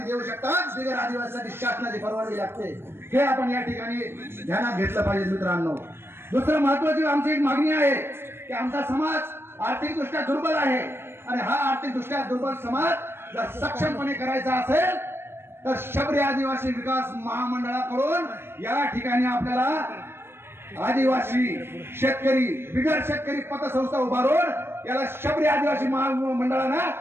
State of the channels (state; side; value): late; left; 0.11 ms